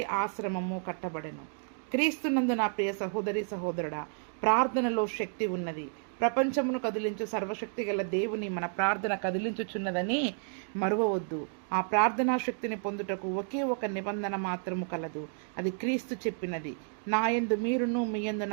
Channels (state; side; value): silent; left; 57 dB below the other